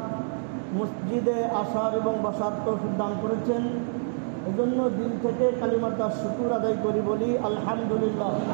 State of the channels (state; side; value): silent; left; digital silence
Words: মসজিদে আসার এবং বসার তৌফিক দান করেছেন। এজন্য দিল থেকে কালিমাটার শুকর আদায় করি, বলি আলহামদুলিল্লাহ।